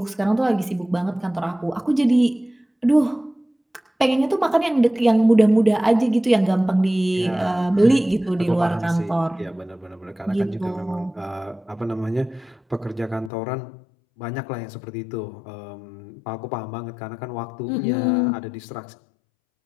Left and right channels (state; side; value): drops out; right; at 13.3 s